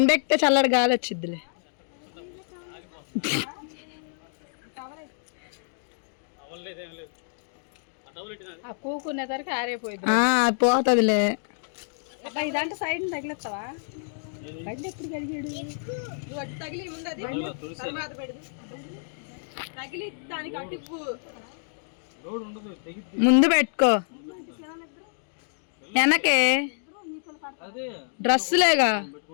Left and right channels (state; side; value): silent; right; digital silence